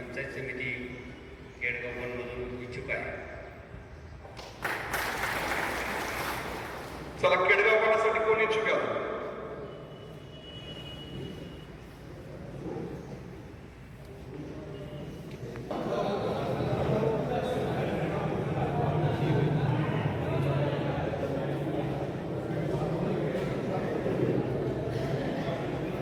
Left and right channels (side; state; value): both; identical; correlation 1.00